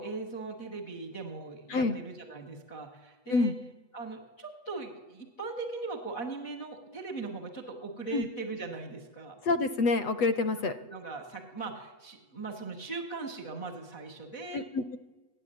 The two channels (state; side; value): late; right; 8.2 ms